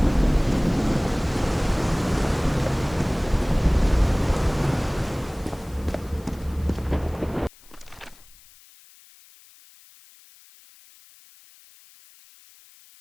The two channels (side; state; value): left; noise; hiss, 25 dB below the sound